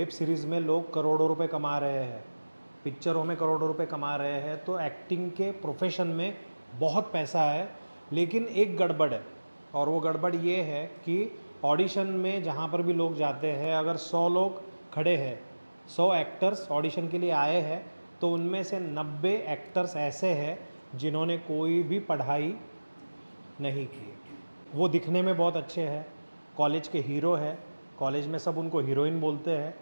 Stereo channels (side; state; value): both; inverted; correlation -1.00